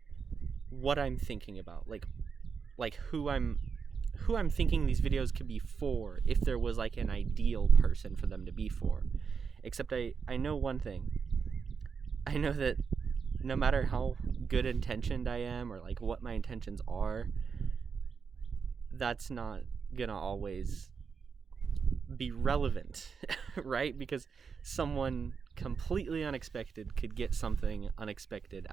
what I'm thinking about, like who I'm thinking these videos could be for if there was like an ideal person for them to be for. Except I know one thing. I know that no matter how good intentioned I am or like what my intentions are, that's not gonna always be relevant, right? Because someone completely unexpected could get something unexpected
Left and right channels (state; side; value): quieter; left; 5.8 dB